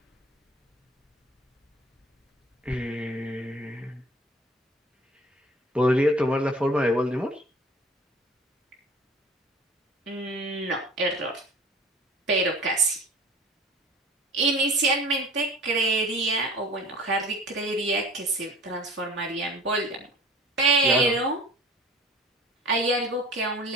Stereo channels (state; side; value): normal; both; correlation 0.44